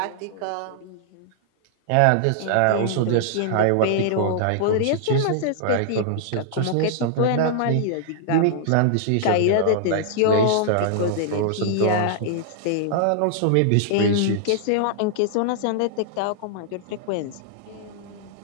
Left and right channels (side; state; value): both; different; correlation -0.01